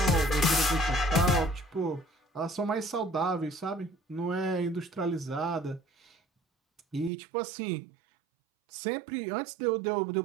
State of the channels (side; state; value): left; drops out; at 7.1 s